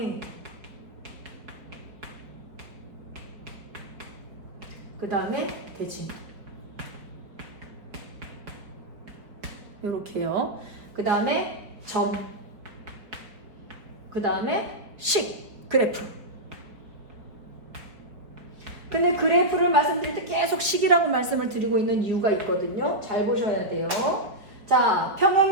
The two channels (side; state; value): left; late; 4.6 ms